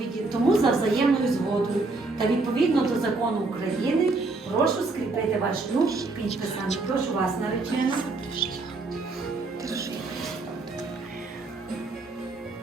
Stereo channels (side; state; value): left; quieter; 3.5 dB